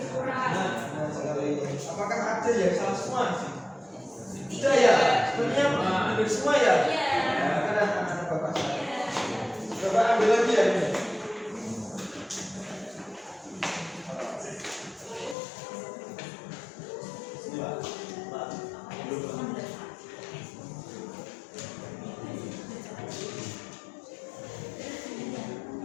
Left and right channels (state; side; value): drops out; right; at 15.4 s